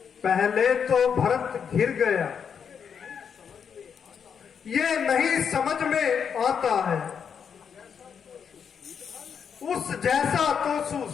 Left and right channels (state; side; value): quieter; right; 7.1 dB